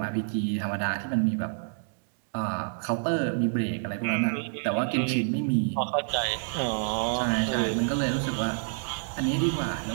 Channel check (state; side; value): silent; left; digital silence